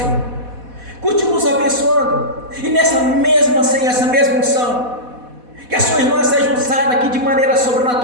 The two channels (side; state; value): left; late; 4.1 ms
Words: Continua nos abençoando, e nessa mesma, Senhor, essa mesma unção, que a sua irmã seja usada aqui de maneira